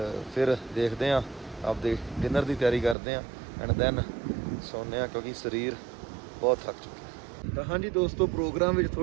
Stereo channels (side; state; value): left; drops out; at 3.0 s